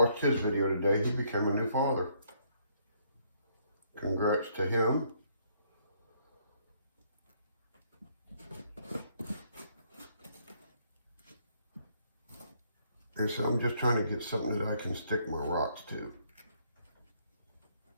his video today. He became a new father. Congrats to him. He said, I'm just trying to get something that I can stick my rocks to.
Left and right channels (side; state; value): both; inverted; correlation -0.68